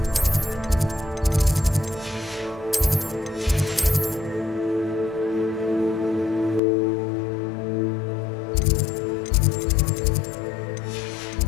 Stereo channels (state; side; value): drops out; right; at 6.6 s